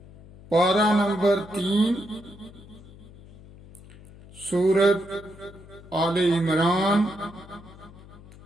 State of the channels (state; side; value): noise; left; hum, 21 dB below the sound